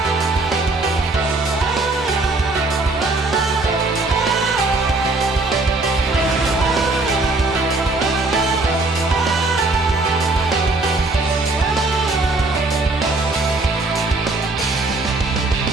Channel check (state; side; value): quieter; left; 3.2 dB